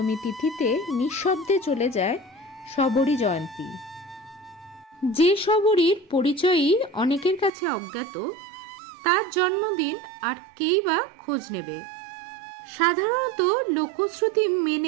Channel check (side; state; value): left; drops out; at 7.5 s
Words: তিথিতে নিঃশব্দে চলে যায় শবরী জয়ন্তী। যে শবরীর পরিচয়ই অনেকের কাছে অজ্ঞাত, তার জন্মদিন আর কেই বা খোঁজ নেবে। সাধারণত লোকশ্রুতি